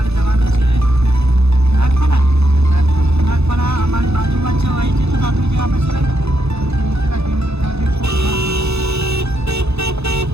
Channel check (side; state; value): left; late; 0.79 ms